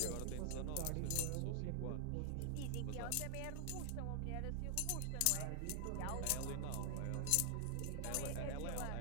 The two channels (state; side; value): different; both; correlation 0.00